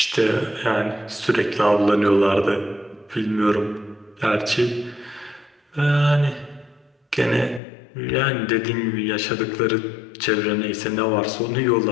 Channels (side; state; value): right; drops out; at 7.6 s